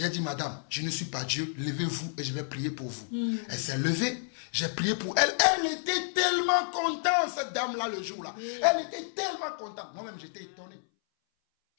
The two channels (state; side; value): silent; right; 58 dB below the other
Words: dit, madame, je ne suis pas Dieu. Levez-vous et je vais prier pour vous. Elle s'est levée. J'ai prié pour elle. Elle était tellement contente, cette dame-là, le jour-là. Elle était tellement contente. Moi-même, j'étais étonné.